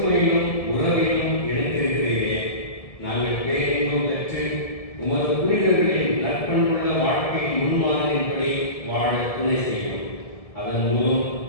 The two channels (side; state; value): right; late; 1.7 ms